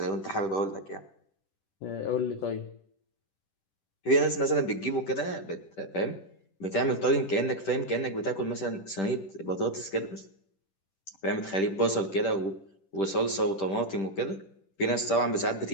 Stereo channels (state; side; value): late; right; 10 ms